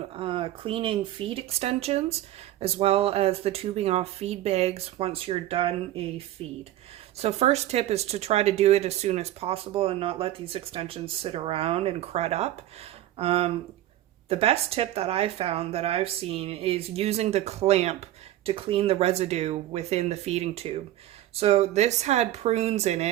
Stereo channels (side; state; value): left; quieter; 14.0 dB